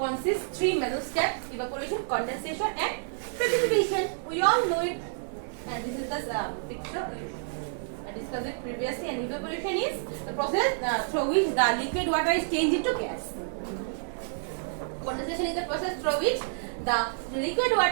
consists 3 major steps: evaporation, condensation and precipitation. We all know it, and this is the picture I discussed it previously. And evaporation is the process through which the liquid water is changed into gas. Condensation is the process through which the liquid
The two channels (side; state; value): left; silent; digital silence